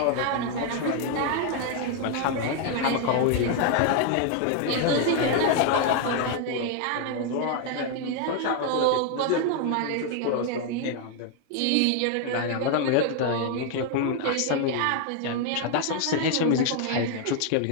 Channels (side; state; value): both; different; correlation 0.00